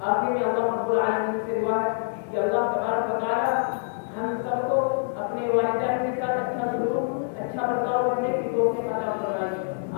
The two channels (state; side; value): silent; right; digital silence